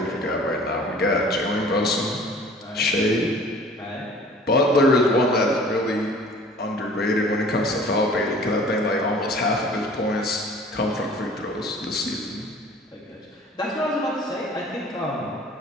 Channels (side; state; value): both; normal; correlation 0.48